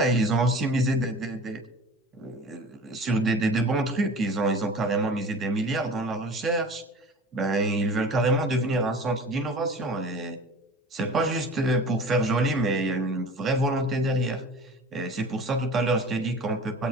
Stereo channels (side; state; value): both; normal; correlation 0.40